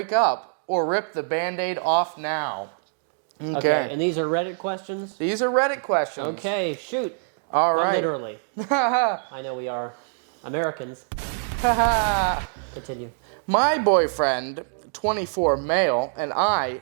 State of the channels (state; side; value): silent; left; digital silence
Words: up or rip the Band-Aid off now? Okay, and these are Reddit questions? These are Reddit questions. Okay, shoot. All right. Not literally. I know we are Americans. Continue. My boyfriend, 24 male, and I,